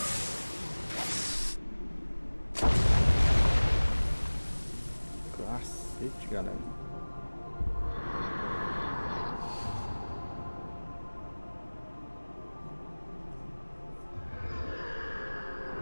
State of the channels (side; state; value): both; inverted; correlation -1.00